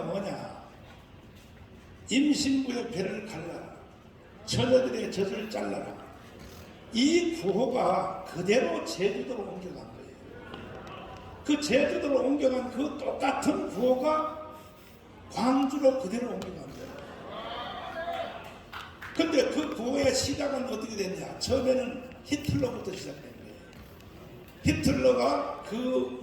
뭐냐, 임신부의 배를 갈라라, 처녀들의 젖을 잘라라. 이 구호가 그대로 제주도로 옮겨간 거예요. 그 제주도로 옮겨간 그 똑같은 구호가 광주로 그대로 옮겨간 거예요. 근데 그 구호의 시작은 어떻게 됐냐, 처음에는 히틀러부터 시작된 거예요. 히틀러가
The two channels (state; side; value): identical; both; correlation 1.00